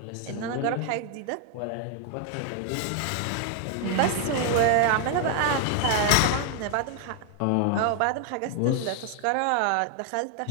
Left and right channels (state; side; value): different; both; correlation 0.00